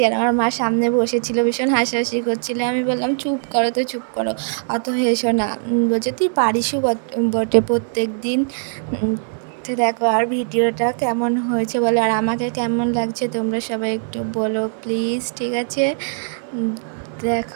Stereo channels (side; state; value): left; silent; digital silence